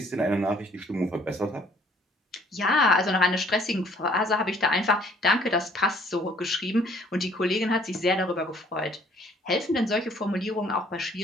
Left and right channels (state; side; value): normal; both; correlation 0.59